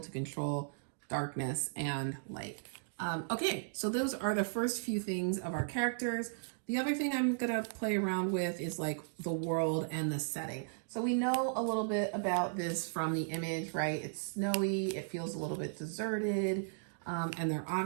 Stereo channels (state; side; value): silent; left; digital silence